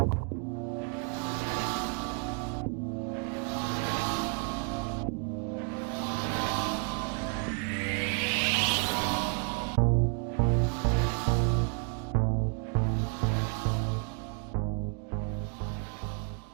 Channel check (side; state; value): left; quieter; 37.1 dB